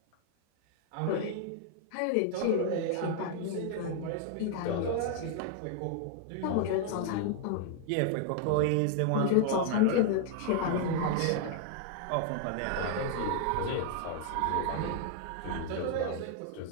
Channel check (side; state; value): both; different; correlation 0.00